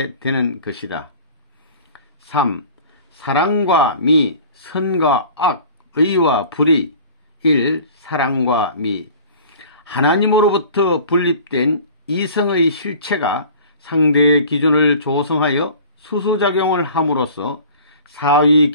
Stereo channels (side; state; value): both; inverted; correlation -0.44